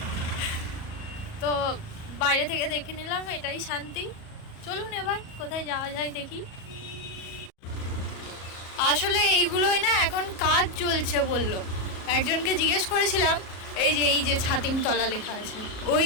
তো বাইরে থেকে দেখে নিলাম, এটাই শান্তি। চলুন এবার কোথায় যাওয়া যায় দেখি। আসলে এইগুলোই না এখন কাজ চলছে বললো, একজনকে জিজ্ঞেস করেছিলাম। এই যে ছাতিমতলা লেখা আছে,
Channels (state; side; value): late; right; 37 ms